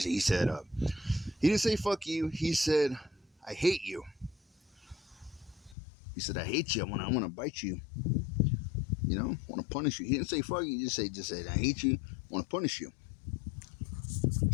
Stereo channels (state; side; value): drops out; right; at 5.8 s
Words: said, he didn't say fuck you. He said, I hate you. He said, I hate you. I want to bite you. You know, I want to punish you. He didn't say fuck you. He just said, I hate you. I want to punish you.